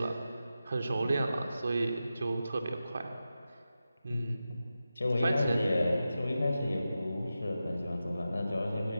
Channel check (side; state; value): both; inverted; correlation -0.92